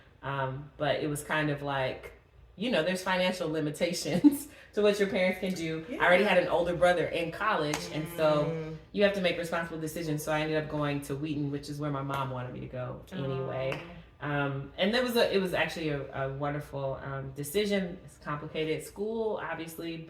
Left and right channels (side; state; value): both; identical; correlation 1.00